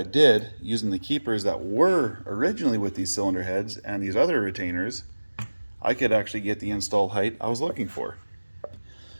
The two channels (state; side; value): inverted; both; correlation -1.00